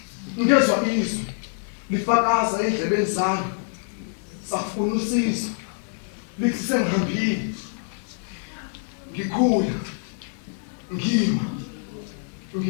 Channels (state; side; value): silent; right; 62 dB below the other